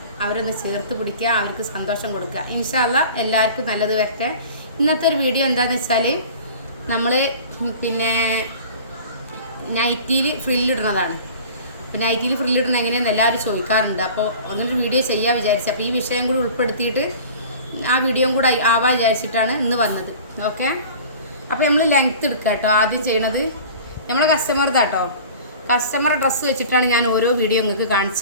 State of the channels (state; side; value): inverted; both; correlation -0.42